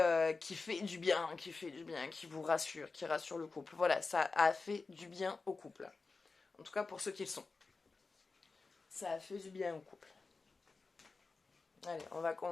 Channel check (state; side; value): quieter; right; 4.1 dB